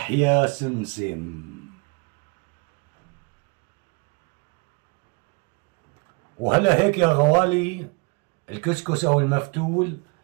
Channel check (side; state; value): left; quieter; 29.2 dB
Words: يا سمسم. وهلا هيك يا غوالي الكسكس او المفتول